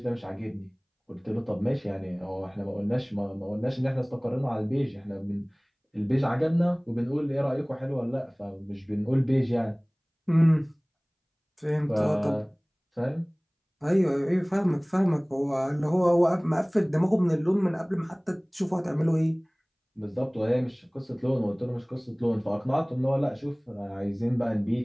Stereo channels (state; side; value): identical; both; correlation 1.00